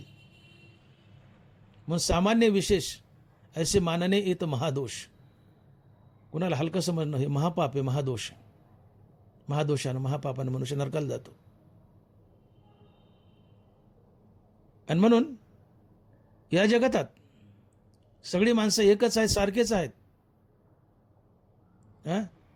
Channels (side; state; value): both; identical; correlation 1.00